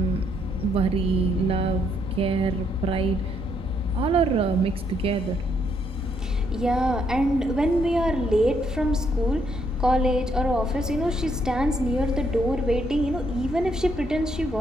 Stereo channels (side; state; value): both; normal; correlation 0.73